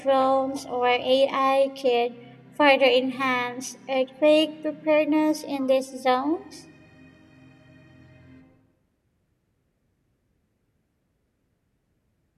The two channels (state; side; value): identical; both; correlation 1.00